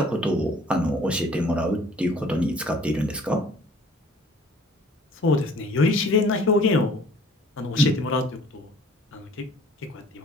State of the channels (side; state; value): both; normal; correlation 0.53